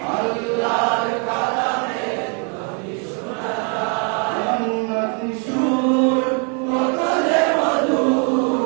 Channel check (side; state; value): left; quieter; 38.2 dB